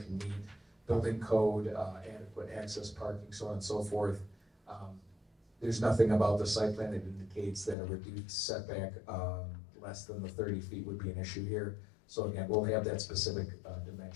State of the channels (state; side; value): drops out; right; at 7.8 s